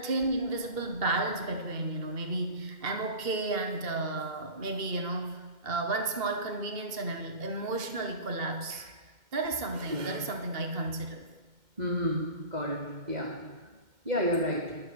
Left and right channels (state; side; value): late; left; 2.1 ms